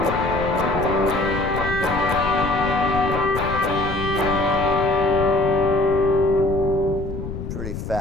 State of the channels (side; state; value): left; noise; rumble, 7 dB below the sound